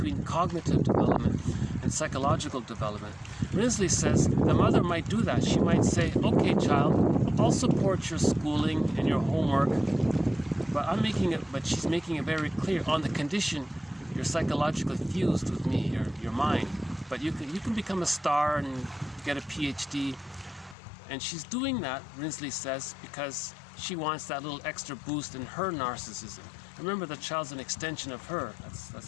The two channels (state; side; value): drops out; right; at 20.8 s